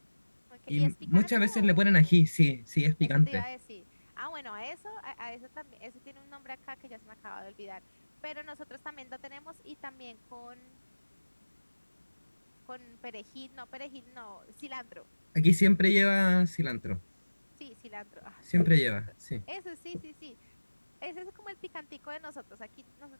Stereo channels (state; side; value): inverted; both; correlation -1.00